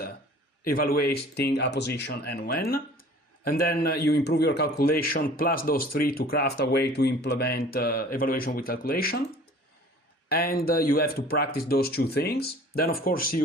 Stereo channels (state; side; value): normal; both; correlation 0.48